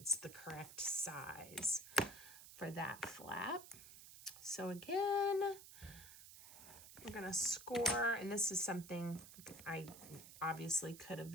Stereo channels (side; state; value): right; noise; hiss, 16 dB below the sound